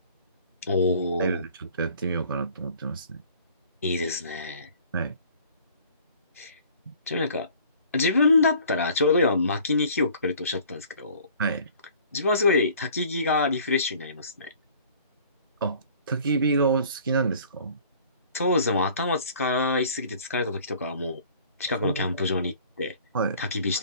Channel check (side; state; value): both; inverted; correlation -0.51